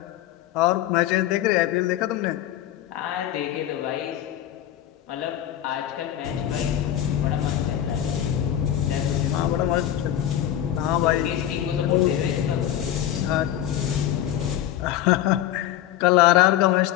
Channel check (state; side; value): quieter; right; 11.9 dB